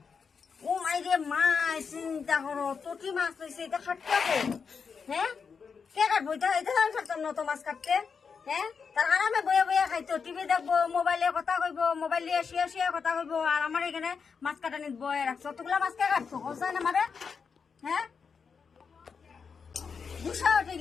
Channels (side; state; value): right; quieter; 5.8 dB